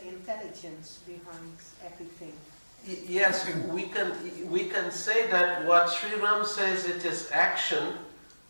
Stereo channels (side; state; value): both; inverted; correlation -1.00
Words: intelligence behind everything. Yes, we can say that what Sri Ram says, it is action